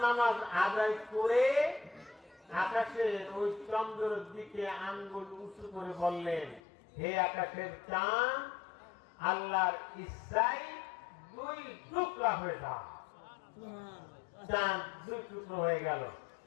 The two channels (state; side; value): drops out; right; at 6.6 s